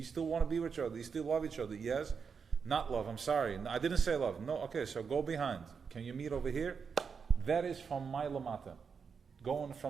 still want to be with each other? Do you still love each other? Yes? Not love, I'm sorry. I didn't say love. No, okay, so go behind. Can you meet over here? That is from my lamata. Going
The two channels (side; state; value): left; quieter; 6.0 dB